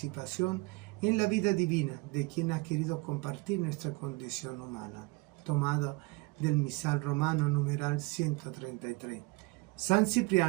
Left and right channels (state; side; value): quieter; left; 24.3 dB